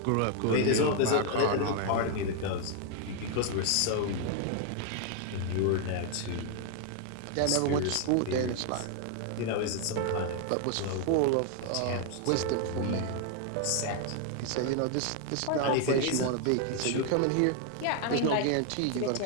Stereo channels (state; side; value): different; both; correlation 0.00